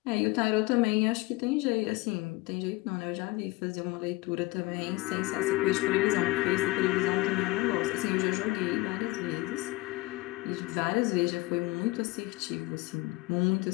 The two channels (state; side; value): quieter; right; 21.1 dB